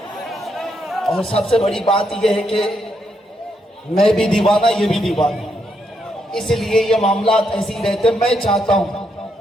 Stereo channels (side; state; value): both; normal; correlation 0.79